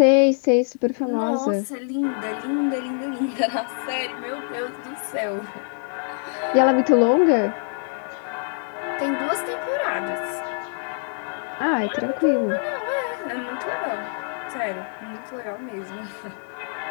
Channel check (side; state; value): right; silent; 62 dB below the other